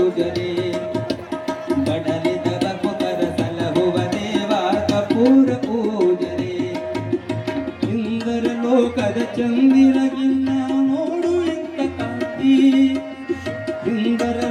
ಬಡಲಿದ ಭಕ್ತರ ಸಲಹುವ ದೇವ ಕಪೂರ ಪೂಜನೆ ಇಂದರ ಲೋಕದ ಚಂದಿರಗಿನ್ನ ನೋಡು ಇಂಥ ಕಾಂತಿ ಇಂದರ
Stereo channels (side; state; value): both; identical; correlation 1.00